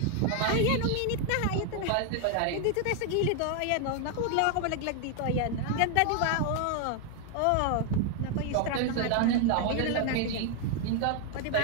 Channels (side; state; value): both; different; correlation 0.00